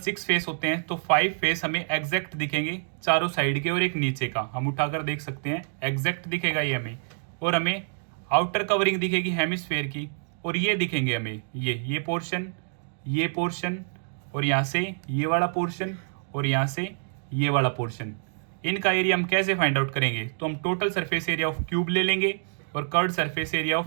फेस होते हैं, तो 5 फेस हमें एग्जैक्ट दिखेंगे चारों साइड के और एक नीचे का, हम उठाकर देख सकते हैं एग्जैक्ट दिखेगा ये हमें। और हमें आउटर कवरिंग दिखेगी हेमिस्फेयर की, और ये दिखेंगे हमें ये पोर्शन, ये पोर्शन, और यहाँ से ये वाला पोर्शन, और यहाँ से ये वाला पोर्शन। इनका एरिया हम कैसे फाइंड आउट करेंगे, तो हम total surface area of cube ले लेंगे और curved surface area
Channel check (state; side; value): silent; left; digital silence